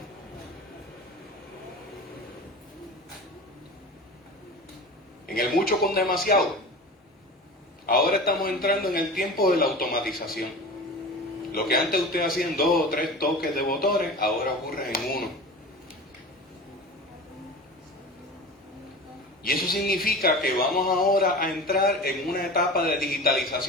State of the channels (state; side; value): normal; both; correlation 0.34